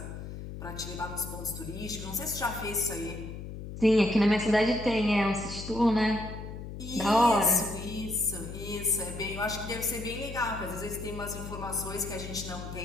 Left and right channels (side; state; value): left; noise; hum, 9 dB below the sound